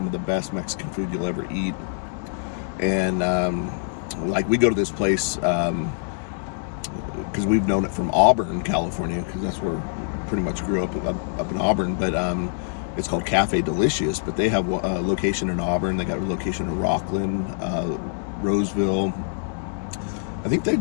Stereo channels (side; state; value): right; silent; 62 dB below the other